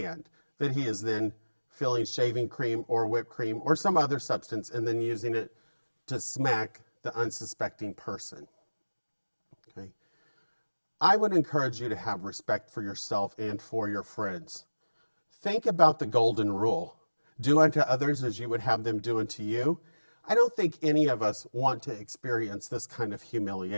that he is then filling shaving cream or whipped cream or some other substance and then using it to smack the unsuspecting person. Okay. I would encourage you to have respect for yourself and for your friends. Think about the golden rule. Do unto others as you would have them do unto you. I don't think any of us want to experience this kind of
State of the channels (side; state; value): both; inverted; correlation -1.00